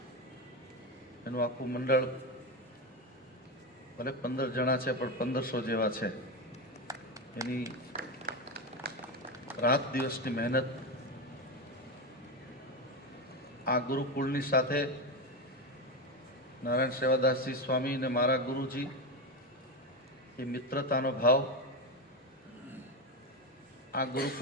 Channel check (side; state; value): both; normal; correlation 0.15